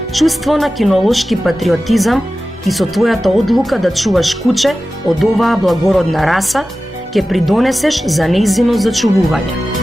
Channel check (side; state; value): both; normal; correlation 0.95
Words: чувство на кинолошки патриотизам и со твојата одлука да чуваш куче од оваа благородна раса, ќе придонесеш за нејзино зачувување.